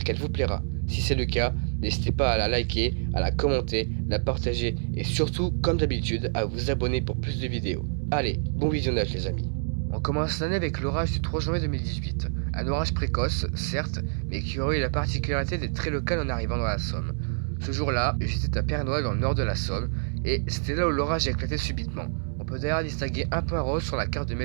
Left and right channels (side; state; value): left; silent; digital silence